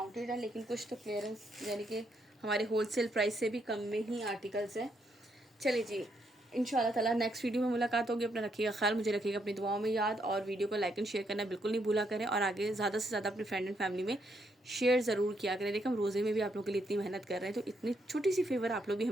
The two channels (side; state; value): both; normal; correlation 0.76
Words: हैं, लेकिन कुछ तो क्लियरेंस यानी कि हमारे होलसेल प्राइस से भी कम में ही आर्टिकल्स हैं। चलिए जी, इंशाल्लाह ताला नेक्स्ट वीडियो में मुलाकात होगी। अपना रखिएगा ख्याल, मुझे रखिएगा अपनी दुआओं में याद, और वीडियो को लाइक एंड शेयर करना बिल्कुल नहीं भूला करें, और आगे ज़्यादा से ज़्यादा अपनी फ्रेंड एंड फैमिली में शेयर ज़रूर किया करें। देखिए हम रोज़े में भी आप लोगों के लिए इतनी मेहनत कर रहे हैं, तो इतनी छोटी सी फेवर आप लोग भी